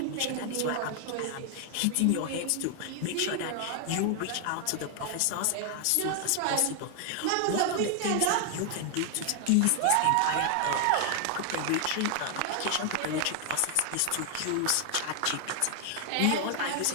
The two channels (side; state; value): both; different; correlation 0.00